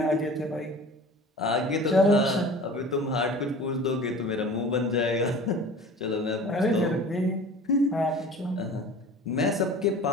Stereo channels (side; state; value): both; normal; correlation 0.41